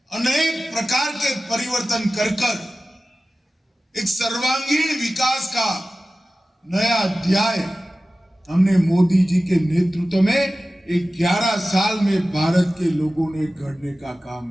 अनेक प्रकार के परिवर्तन कर एक सर्वांगीण विकास का नया अध्याय हमने मोदी जी के नेतृत्व में 11 साल में भारत के लोगों ने गढ़ने का काम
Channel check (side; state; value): both; normal; correlation 0.96